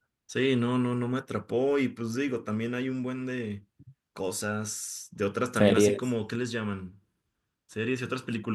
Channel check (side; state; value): both; identical; correlation 1.00